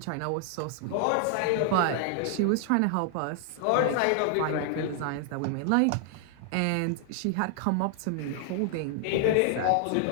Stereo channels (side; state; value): both; different; correlation 0.00